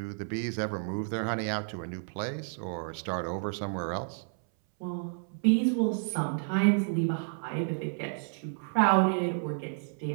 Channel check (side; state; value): left; silent; 57 dB below the other